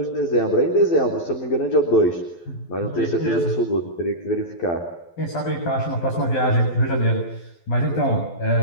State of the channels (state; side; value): late; right; 12 ms